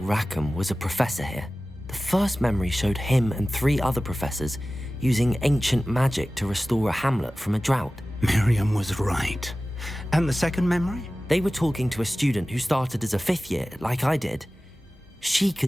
was a professor here. The first memory showed him and 3 other professors using ancient magic to restore a hamlet from a drought. Miriam was right. And the second memory? They were talking to a student who started as a 5th year, like I did. She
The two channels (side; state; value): both; normal; correlation 0.96